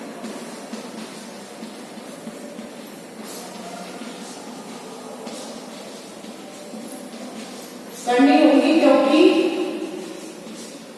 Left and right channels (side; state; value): both; identical; correlation 1.00